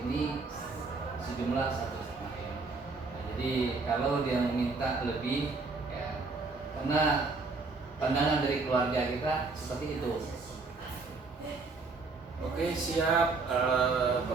ini sejumlah 1,5 M. Nah, jadi kalau dia meminta lebih, ya karena pandangan dari keluarga kita seperti itu. Oke, siap.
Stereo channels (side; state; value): left; quieter; 4.0 dB